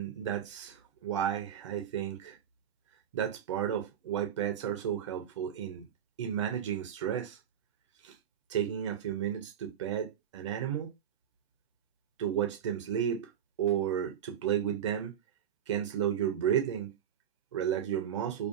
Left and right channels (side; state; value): left; quieter; 9.3 dB